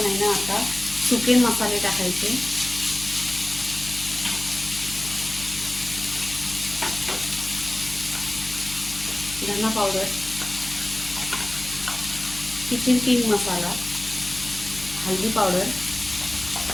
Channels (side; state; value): left; noise; hum, 14 dB below the sound